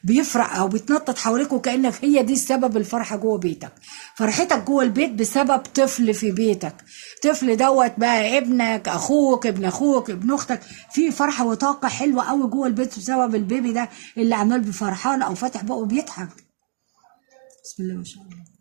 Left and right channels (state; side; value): silent; left; digital silence